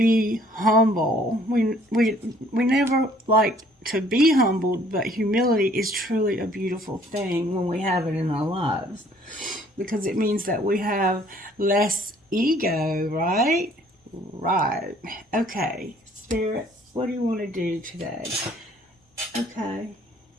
humble. We never like to be humbled, but humility is truly a beautiful thing when we have it in our lives. Because it means that we have less ego, right? Right. Okay, Spirit, what do you want to do today? Okay.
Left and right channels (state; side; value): normal; both; correlation 0.59